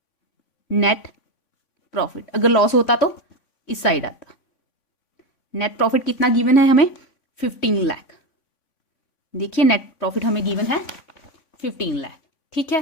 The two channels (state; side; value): late; right; 3.5 ms